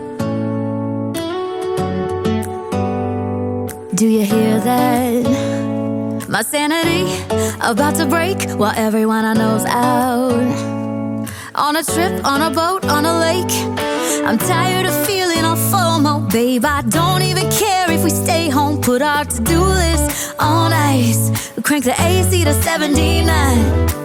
Do you hear that? My sanity about to break while everyone I know's out. On a trip, on a boat, on a lake. I'm tired of feeling all FOMO, babe. I don't even care if we stay home. Put our to-do list on ice. Crank the AC to 79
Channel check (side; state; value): both; identical; correlation 1.00